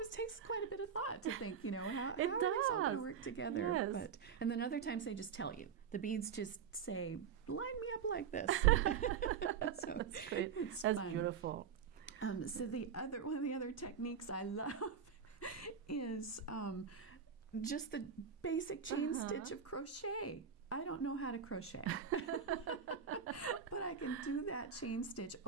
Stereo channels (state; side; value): quieter; left; 7.0 dB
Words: it takes quite a bit of thought to think, how are these all going to work together? Yes. And then other times they just tell you. The beads just say, line me up like this. So it's That's fun. Beautiful. So one of the other techniques I love is just the basic chain stitch of crochet. I don't know how to crochet, but I can do that chain stitch